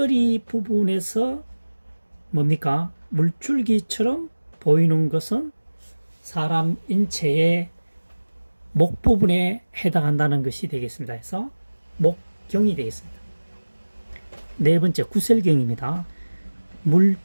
부분에서 뭡니까? 물줄기처럼 보이는 것은 사람 인체의 목 부분에 해당한다는 것이 되겠습니다. 그래서 목경이 되겠습니다. 네 번째, 구셀경입니다.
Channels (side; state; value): both; inverted; correlation -1.00